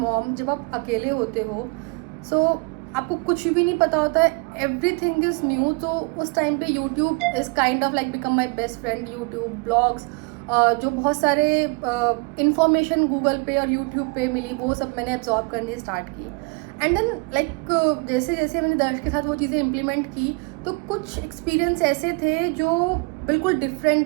mom जब आप अकेले होते हो सो आपको कुछ भी नहीं पता होता है, एवरीथिंग इज़ न्यू। तो उस टाइम पे YouTube is kind of like become my best friend. YouTube blogs जो बहुत सारे इंफॉर्मेशन गूगल पे और यूट्यूब पे मिली वो सब मैंने एब्जॉर्ब करनी स्टार्ट की। एंड देन लाइक जैसे जैसे मैंने दर्श के साथ वो चीज़ें इम्प्लीमेंट की तो कुछ एक्सपीरियंस ऐसे थे जो बिल्कुल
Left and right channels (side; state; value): left; quieter; 31.0 dB